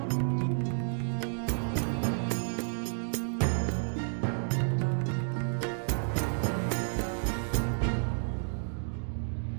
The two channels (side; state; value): left; silent; digital silence